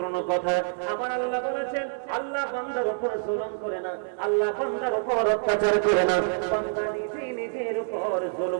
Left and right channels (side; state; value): left; silent; 60 dB below the other